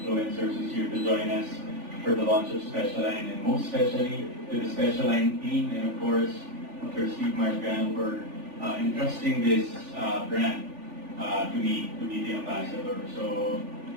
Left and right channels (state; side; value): late; left; 3.4 ms